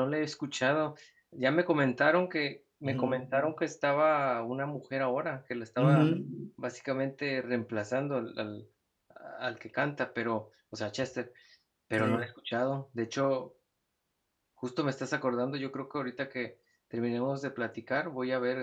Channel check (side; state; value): both; identical; correlation 1.00